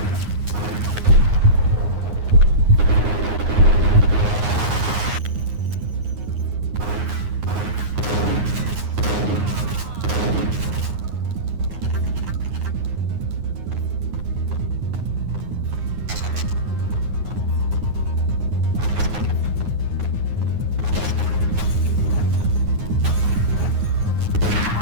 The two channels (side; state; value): left; late; 9.6 ms